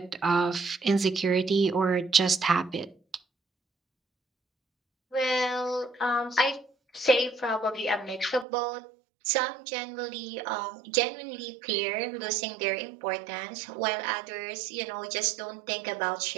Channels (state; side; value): drops out; left; at 8.5 s